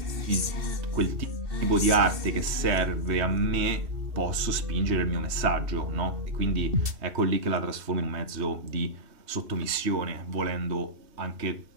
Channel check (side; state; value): left; late; 3.2 ms